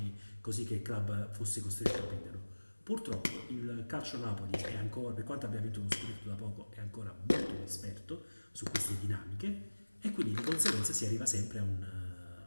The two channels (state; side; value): inverted; both; correlation -1.00